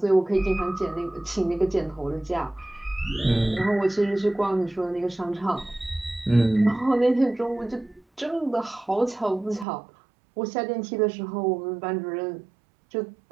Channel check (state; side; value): drops out; left; at 9.7 s